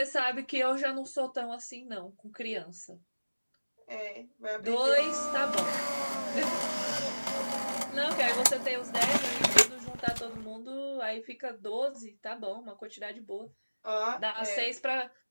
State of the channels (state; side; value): inverted; both; correlation -1.00